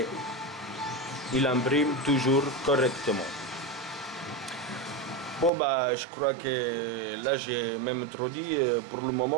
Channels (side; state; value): left; drops out; at 5.5 s